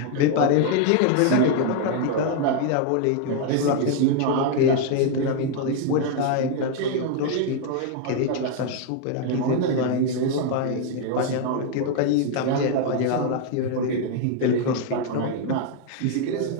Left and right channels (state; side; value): different; both; correlation 0.00